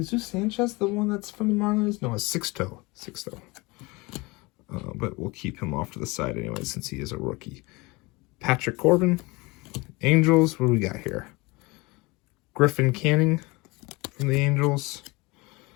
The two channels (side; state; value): right; quieter; 24.5 dB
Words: Sanchez, the one that's from the Marlins? No, it's Sixto. But we'll keep him off to the side anyway, since he is a rookie. Patrick Corbin, Angels. What do we got here? Griffin Canning from the Angels.